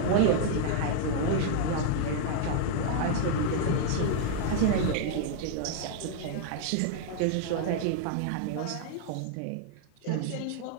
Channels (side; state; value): both; different; correlation 0.00